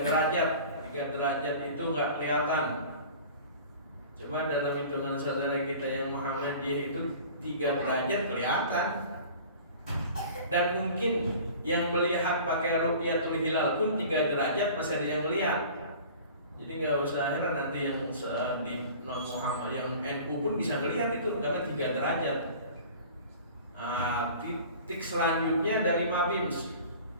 derajat. 3 derajat itu nggak kelihatan. Cuma dalam hitungan saudara kita yang Muhammadiyah itu 3 derajat kelihatan. Dan mungkin yang melihat pakai ru'yatul hilal pun 3 derajat masih ada yang melihat. Jadi nggak usah heran nanti yang di non Muhammad, yang NU pun bisa melihat itu karena 3 derajat. Titik selanjutnya dari Mabims,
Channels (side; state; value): both; inverted; correlation -0.43